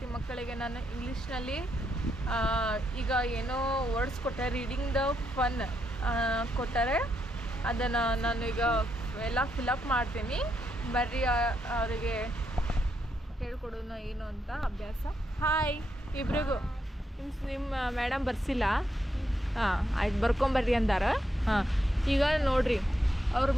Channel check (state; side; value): normal; both; correlation 0.80